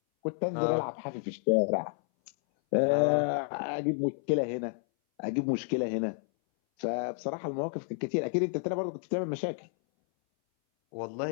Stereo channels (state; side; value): silent; right; 57 dB below the other